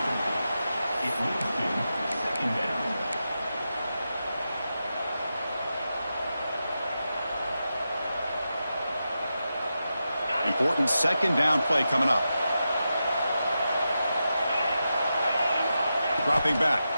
Important second down play coming up. Dropping back,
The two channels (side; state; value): both; inverted; correlation -0.89